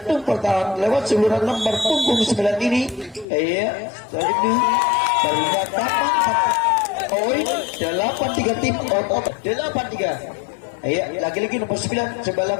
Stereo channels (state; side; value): drops out; right; at 3.2 s